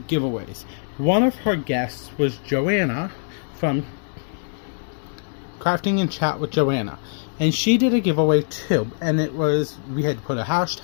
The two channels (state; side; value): silent; right; digital silence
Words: giveaways. One of her guests was Joanna from Crafting and Chat with Joanna, and she did a giveaway too, and it was, we had to put a